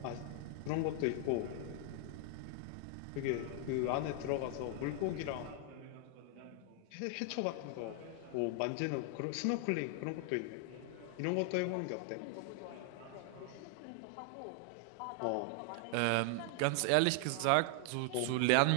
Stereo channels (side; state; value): both; different; correlation 0.00